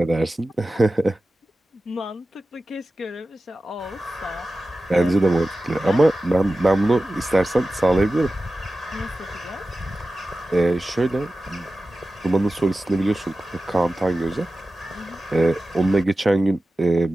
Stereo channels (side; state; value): both; normal; correlation 0.95